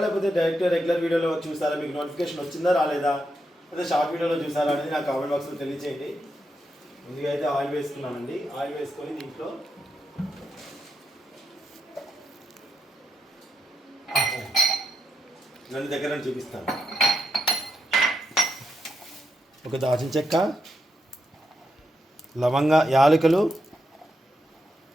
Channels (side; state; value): both; normal; correlation 0.82